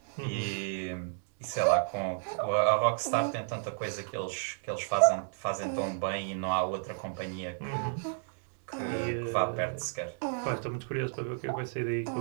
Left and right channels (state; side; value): silent; left; digital silence